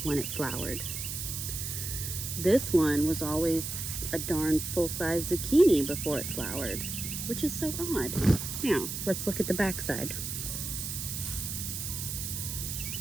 when it flowered. This one was always a darn full-size zucchini before it flowered, which is so odd. Now, let's look at the backside.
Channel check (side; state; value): right; noise; hiss, 5 dB below the sound